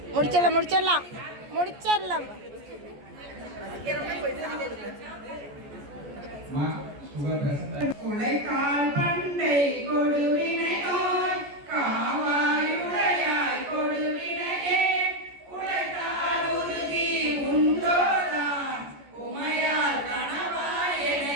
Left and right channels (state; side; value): late; left; 14 ms